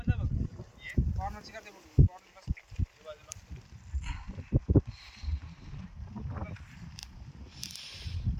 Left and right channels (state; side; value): identical; both; correlation 1.00